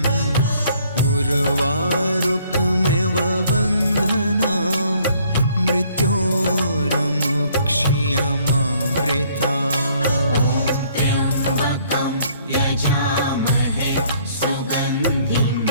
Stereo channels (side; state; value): both; inverted; correlation -0.62